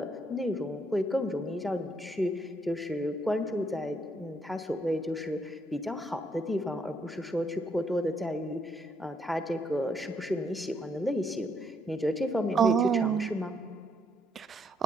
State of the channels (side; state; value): both; normal; correlation 0.73